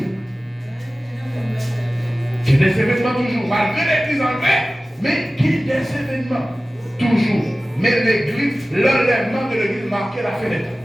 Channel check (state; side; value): normal; both; correlation 0.97